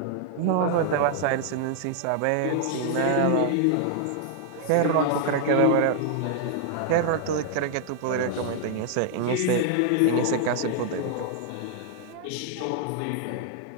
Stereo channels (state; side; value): different; both; correlation 0.00